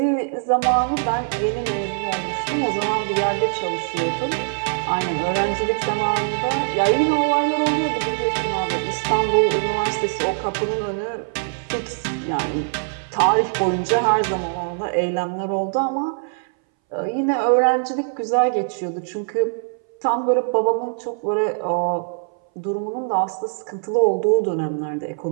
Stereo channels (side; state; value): left; silent; 62 dB below the other